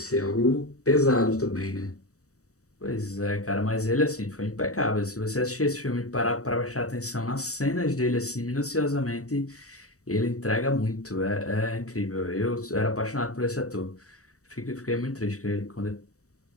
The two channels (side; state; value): right; late; 0.65 ms